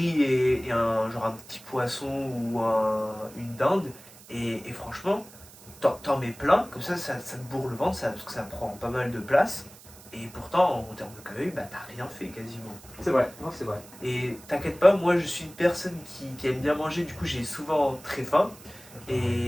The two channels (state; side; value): noise; right; hiss, 20 dB below the sound